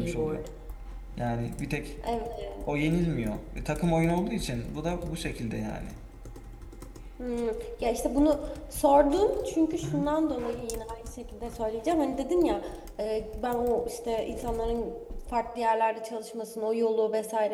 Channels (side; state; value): both; identical; correlation 1.00